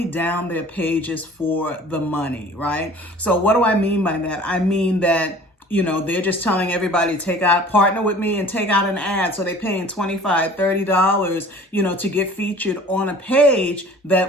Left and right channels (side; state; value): both; normal; correlation 0.47